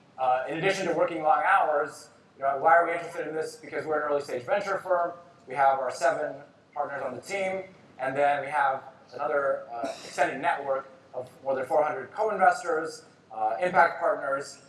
in addition to working long hours, why are we interested in this? Because we're an early stage venture firm. We have our 7 partners on the team, and then we have another extended network of more than 400 co-investors, impact partners,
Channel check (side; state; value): both; identical; correlation 1.00